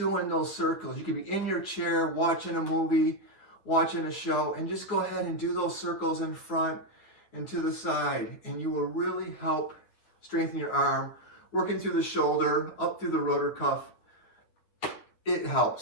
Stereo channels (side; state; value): right; late; 9.3 ms